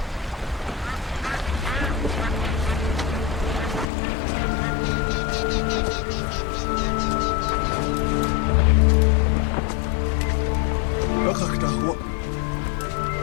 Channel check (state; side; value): drops out; right; at 3.9 s